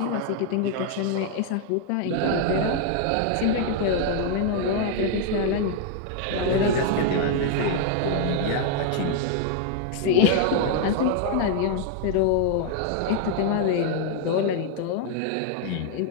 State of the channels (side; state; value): both; different; correlation 0.00